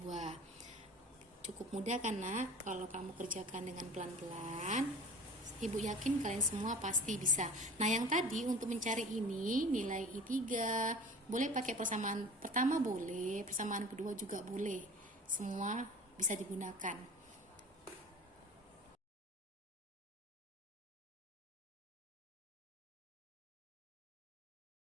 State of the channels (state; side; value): normal; both; correlation 0.40